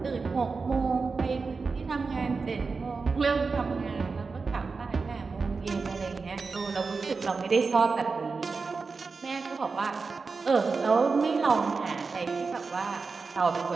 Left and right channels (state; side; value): quieter; left; 4.5 dB